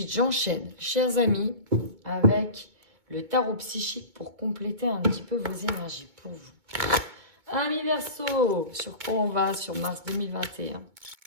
j'enchaîne, chers amis, avec le tarot psychique pour compléter un petit peu vos énergies pour vous. Amis Verseau, sur quoi on va sur mars 2021?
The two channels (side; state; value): left; late; 2.2 ms